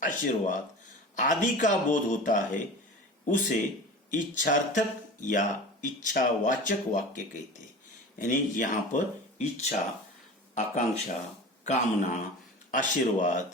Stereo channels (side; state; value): both; normal; correlation 0.35